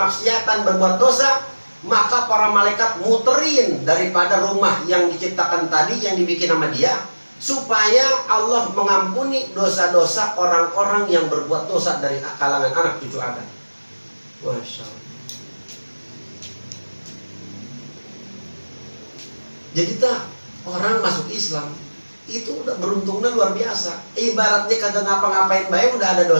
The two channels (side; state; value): both; inverted; correlation -1.00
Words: berbuat dosa, maka para malaikat muterin daripada rumah yang diciptakan tadi, yang dibikin sama dia, supaya Allah mengampuni dosa-dosa orang-orang yang berbuat dosa dari kalangan anak cucu Adam. Masya Allah. Jadi orang masuk Islam itu udah beruntungnya luar biasa. Ibaratnya kagak ngapa-ngapain baik, udah ada